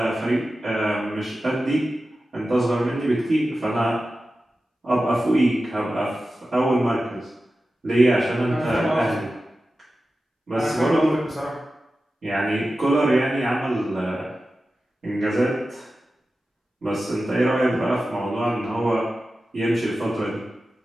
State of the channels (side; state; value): both; normal; correlation 0.94